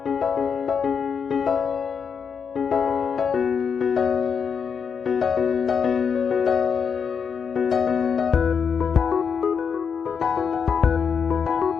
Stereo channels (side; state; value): right; quieter; 6.5 dB